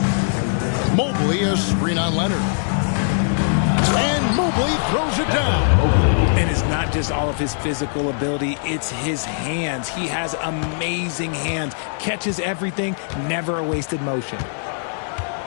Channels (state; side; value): silent; right; digital silence